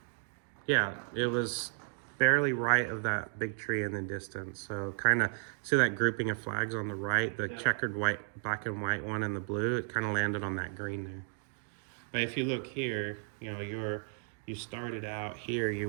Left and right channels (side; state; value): left; silent; 55 dB below the other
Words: Yeah, it was barely right of that big tree in the distance. So kind of see that grouping of flags on the right, the checkered white, black and white one and the blue, it kind of landed on that green there. But if you look here, you started out here,